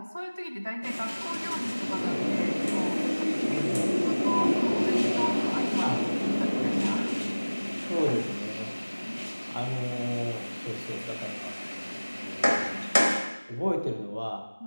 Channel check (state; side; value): inverted; both; correlation -1.00